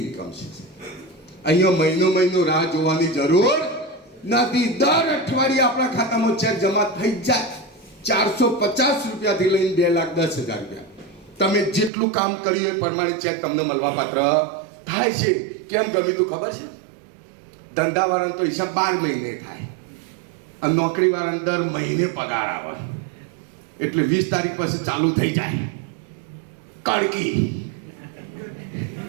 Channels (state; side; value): drops out; left; at 11.9 s